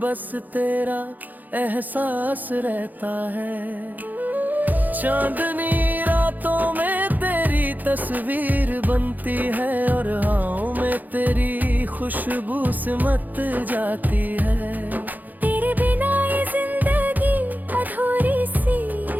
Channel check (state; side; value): late; left; 0.083 ms